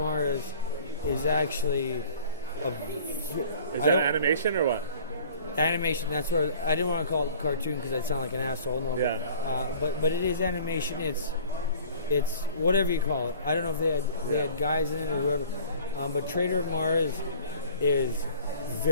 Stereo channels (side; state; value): both; inverted; correlation -0.49